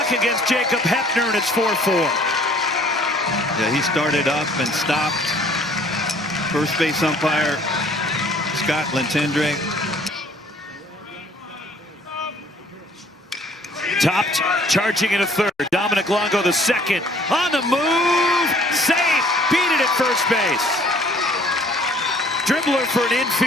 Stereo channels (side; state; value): both; normal; correlation 0.57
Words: against Jacob Hepner, and it's 4-4. Yeah, he started up and stopped. First base umpire Scott Lentendre. Topped, charging into third. Dominic Longo the second. On the move, safe. Beat it at first base. Dribbler for an